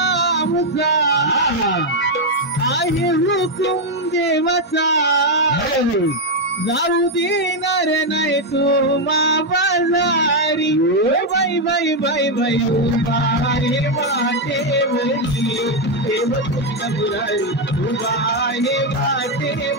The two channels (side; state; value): both; normal; correlation 0.02